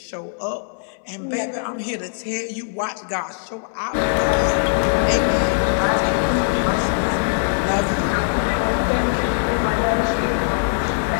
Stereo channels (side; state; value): right; silent; 64 dB below the other